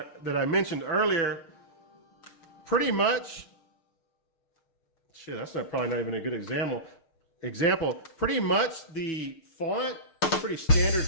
I mentioned earlier, pretty much, shit, that's probably not even a good example. Pretty much the font is pretty standard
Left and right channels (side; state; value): right; late; 6.5 ms